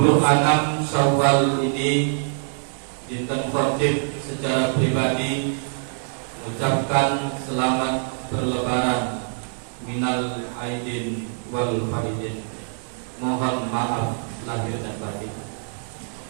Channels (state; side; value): silent; left; digital silence